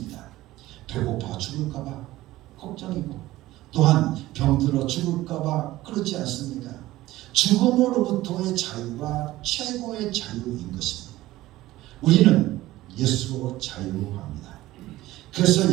배고파 죽을까봐 걱정이고, 또한 병들어 죽을까봐 그렇지 않습니까? 죽음으로부터의 자유가 최고의 자유인 것입니다. 우리는 예수로 자유합니다. 그래서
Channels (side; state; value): left; quieter; 16.6 dB